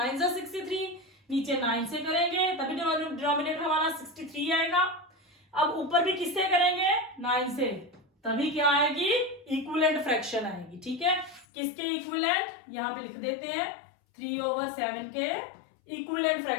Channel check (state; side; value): drops out; right; at 11.5 s